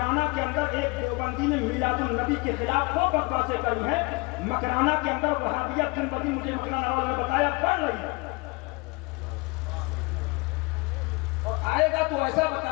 کے اندر ایک دیوبندی نے میلاد النبی کے خلاف وہ بکواسیں کری ہیں، مکرانہ کے اندر وہابیت دن بدن مجھے مکرانہ والوں نے بتایا پڑھ رہی ہے، اور آئے گا تو ایسا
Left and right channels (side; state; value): right; quieter; 26.5 dB